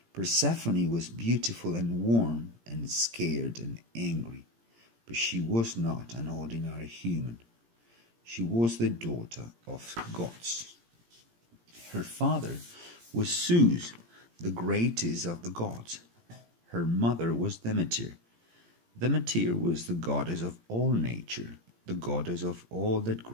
Persephone was beautiful and warm and scared and angry, but she was not an ordinary human. She was the daughter of gods. Her father was Zeus, the greatest of the gods. Her mother was Demeter. Demeter was the goddess of all nature, the goddess of all that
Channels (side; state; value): left; late; 17 ms